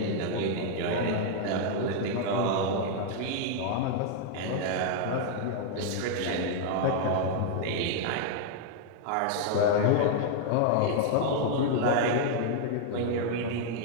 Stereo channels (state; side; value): different; both; correlation 0.00